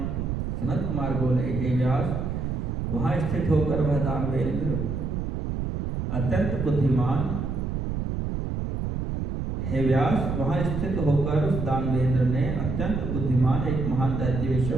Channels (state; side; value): noise; right; rumble, 2 dB below the sound